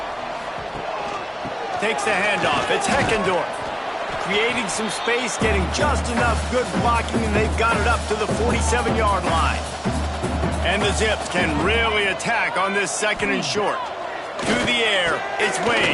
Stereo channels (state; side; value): identical; both; correlation 1.00